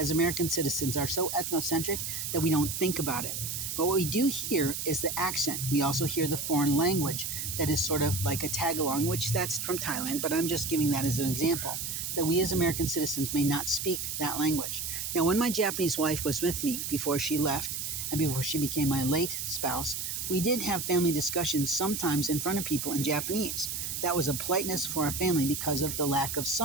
American citizens, are so ethnocentric that we don't think about it. But what we do hear is the accent. We also hear the foreign language that is sort of like a tag-along, which that's from Thailand, but I'm just giving that as an example, that we as American citizens may not speak that language. Now, when my Japanese wife was with me before she left and before she became my late spouse, we did have family discussions sometimes in front of people in Japanese. That was a politeness for our family because of the lack of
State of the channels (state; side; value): noise; right; hiss, 4 dB below the sound